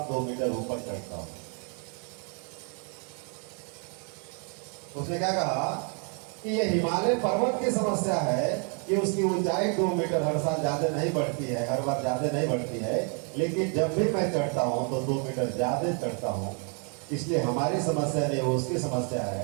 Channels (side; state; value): left; quieter; 39.3 dB